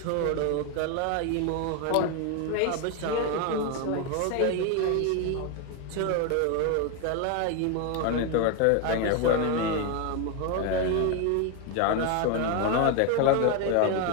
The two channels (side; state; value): both; different; correlation 0.01